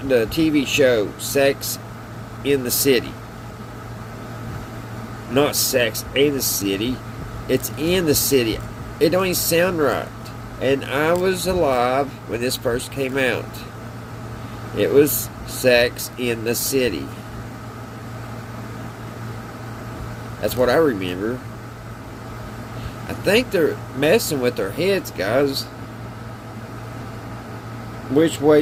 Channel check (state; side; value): identical; both; correlation 1.00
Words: TV show, Sex in the City. Not Sex in the City. It's in the city. It don't even sound right. And I was alive when this first came out. It was Sex in the City. That's what I remember. I think they're messing with their heads, guys. Which way